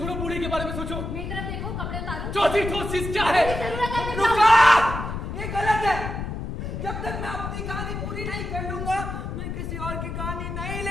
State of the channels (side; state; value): left; noise; rumble, 5 dB below the sound